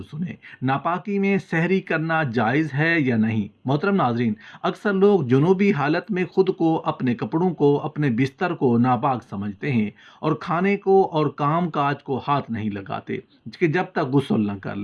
सुने। नापाकी में सहरी करना जायज़ है या नहीं? मोहतरम नाज़रीन, अक्सर लोग जुनूबी हालत में ख़ुद को, अपने कपड़ों को, अपने बिस्तर को नापाक समझते हैं और खाने को और काम काज को हाथ नहीं लगाते कि जब तक गुस्ल न कर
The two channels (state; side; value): identical; both; correlation 1.00